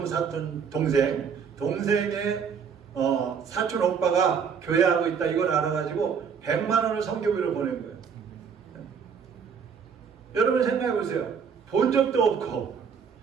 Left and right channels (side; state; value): left; quieter; 6.5 dB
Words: 사촌 동생의 사촌 오빠가 교회하고 있다 이걸 알아가지고 100만 원을 선교비로 보낸 거예요. 여러분 생각해 보세요. 본 적도 없고